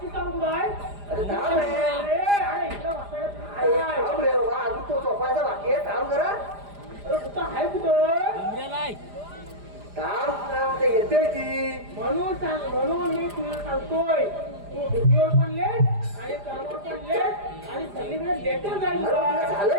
सांग कुठं आहे अरे थांब रे अरे इकडं वासायला अरे काय? थांब रे बाबा अजून तो झोपायचा बाकी आहे थांब जरा अरे कुठं आहे कुठं उमऱ्याला आहे थांब ते येते ती म्हणून मी तुला सांगतोय तू ड्युटीवर पण लेट आणि कामावर पण लेट आणि सगळीकडे लेटर जाईल अरे तुला तुला.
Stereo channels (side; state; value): left; late; 4.9 ms